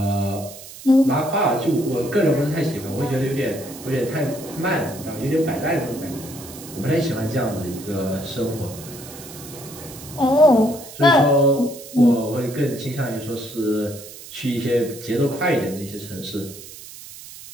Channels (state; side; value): noise; right; hiss, 15 dB below the sound